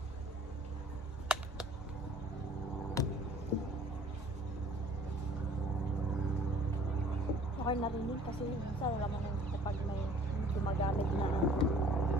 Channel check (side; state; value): both; normal; correlation 0.53